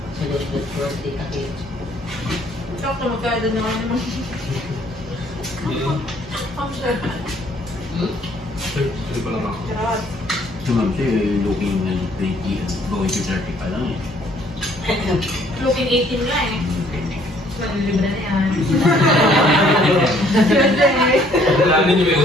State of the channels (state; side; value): normal; both; correlation 0.62